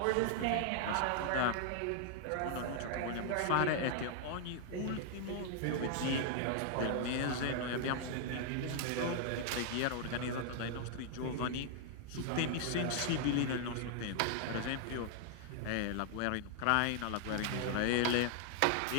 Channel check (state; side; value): different; both; correlation 0.00